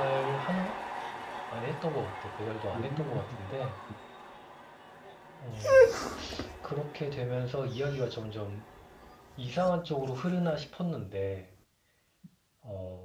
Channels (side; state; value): both; identical; correlation 1.00